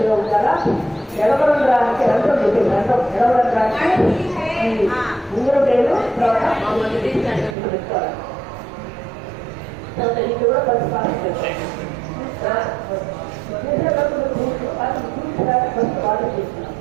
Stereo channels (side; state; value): left; drops out; at 7.6 s